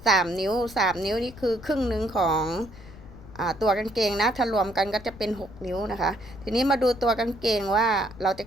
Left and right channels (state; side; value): noise; left; rumble, 18 dB below the sound